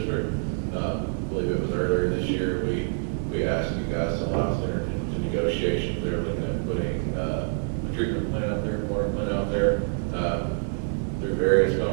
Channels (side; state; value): left; silent; digital silence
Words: I believe it was earlier this year, we asked you guys to allow us to enter into negotiations. They were looking at putting a treatment plant out there, water plant out there, through various